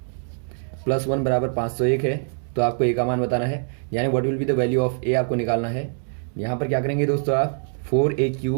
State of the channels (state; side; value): silent; left; digital silence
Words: + 1 बराबर 501 है तो आपको ए का मान बताना है, यानी what will be the value of a आपको निकालना है। यहाँ पर क्या करेंगे दोस्तों, आप